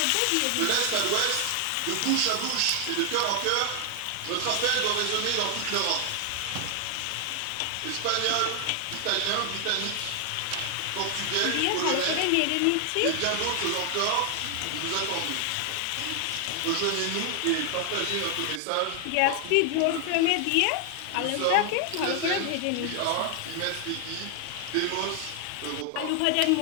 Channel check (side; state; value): both; different; correlation 0.00